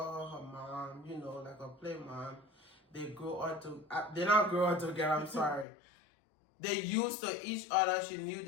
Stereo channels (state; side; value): drops out; right; at 5.7 s